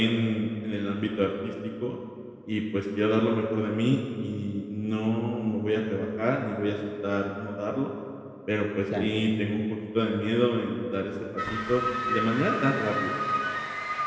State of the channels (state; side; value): identical; both; correlation 1.00